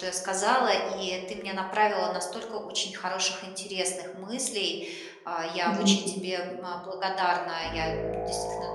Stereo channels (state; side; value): identical; both; correlation 1.00